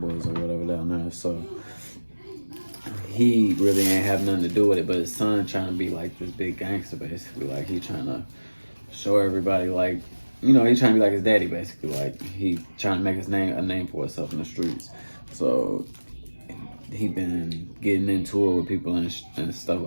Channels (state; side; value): inverted; both; correlation -1.00